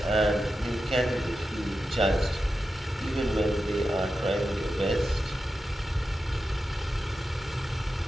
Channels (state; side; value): normal; both; correlation 0.91